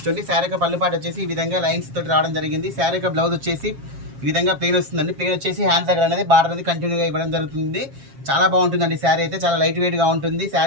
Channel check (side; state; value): left; late; 7.4 ms